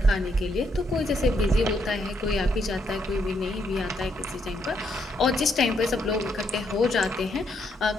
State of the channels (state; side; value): normal; both; correlation 0.75